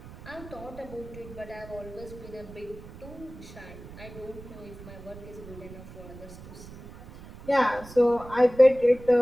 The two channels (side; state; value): right; noise; rumble, 16 dB below the sound